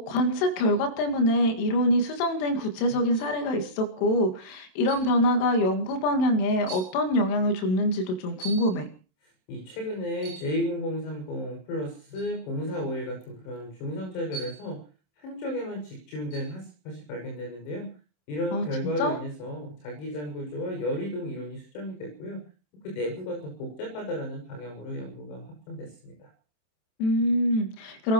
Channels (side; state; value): right; late; 27 ms